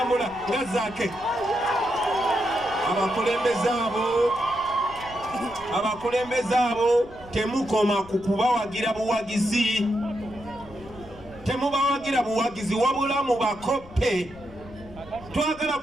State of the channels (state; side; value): noise; left; rumble, 19 dB below the sound